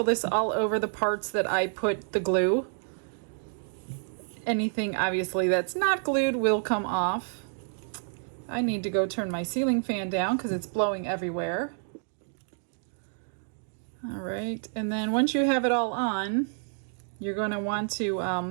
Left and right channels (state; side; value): silent; left; digital silence